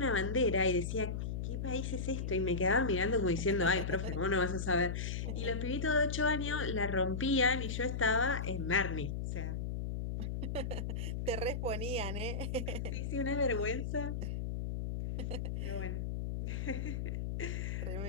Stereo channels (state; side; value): noise; left; hum, 2 dB below the sound